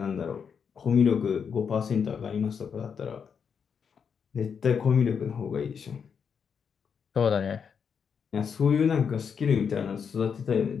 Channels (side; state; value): right; quieter; 6.7 dB